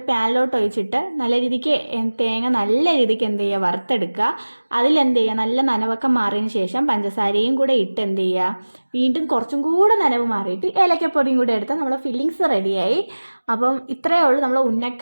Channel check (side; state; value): both; inverted; correlation -1.00